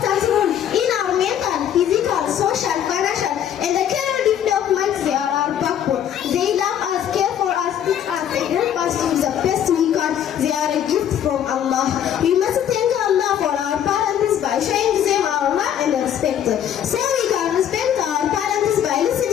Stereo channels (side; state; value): right; quieter; 9.9 dB